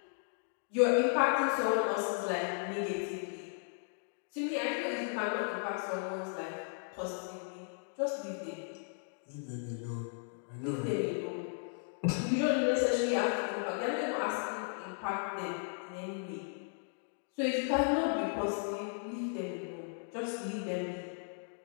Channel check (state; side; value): silent; right; digital silence